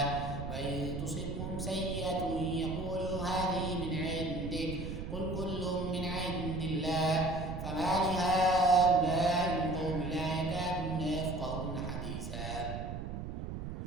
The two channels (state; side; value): noise; right; rumble, 6 dB below the sound